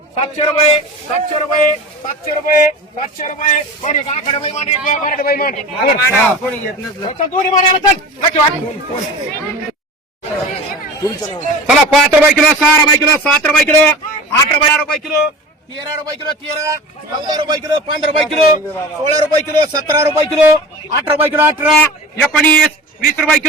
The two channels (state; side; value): normal; both; correlation 0.35